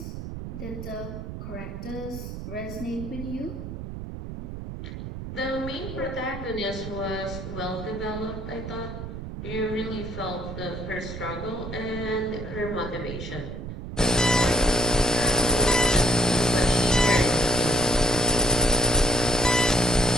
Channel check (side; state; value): right; noise; rumble, 8 dB below the sound